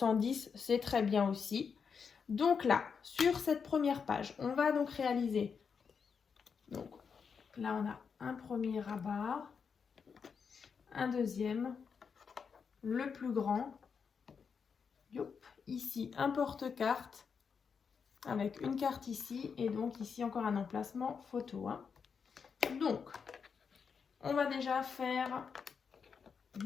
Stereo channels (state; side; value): quieter; right; 6.1 dB